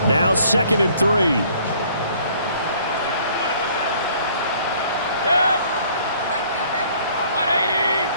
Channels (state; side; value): inverted; both; correlation -0.58